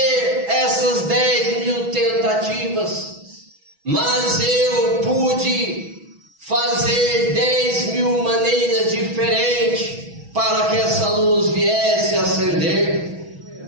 essas 10.000 tentativas, mas eu pude fazer 10.000 maneiras diferentes para que essa luz viesse a acender.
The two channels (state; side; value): late; left; 6.1 ms